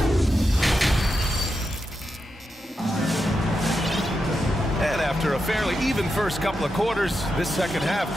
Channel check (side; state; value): both; normal; correlation 0.87